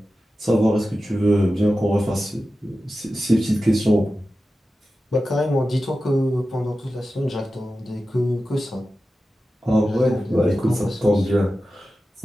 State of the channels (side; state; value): both; normal; correlation 0.93